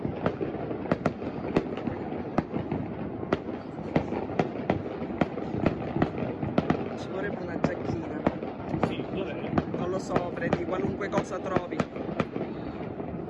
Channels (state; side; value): identical; both; correlation 1.00